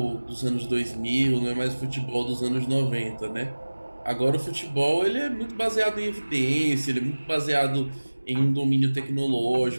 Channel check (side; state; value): both; inverted; correlation -1.00